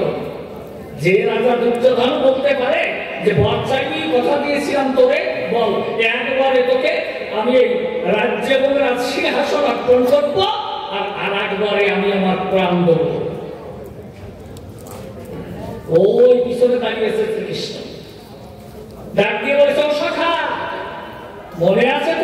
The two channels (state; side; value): identical; both; correlation 1.00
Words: যে রাজা দুর্যোধন বলতে পারে যে বর্ষাকে কথা দিয়েছিলাম তোরে, বল একবারে তোকে আমি এই রাজ্য এবং রাজ সিংহাসন অর্পণ করবো, আর একবারে আমি আমার প্রাণ দেব। ওই পিছনে দাঁড়িয়েছে শ্রীকৃষ্ণ, ডাক দিয়ে বলেছে ও সখা, মনে আছে